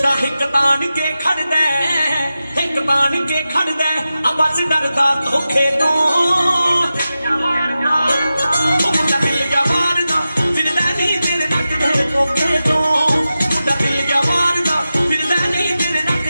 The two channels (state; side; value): inverted; both; correlation -0.93